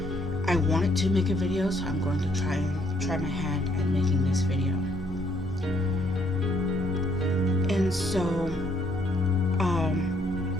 I wanted to make a video, so I'm going to try my hand at making this video. And so,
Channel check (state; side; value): normal; both; correlation 0.69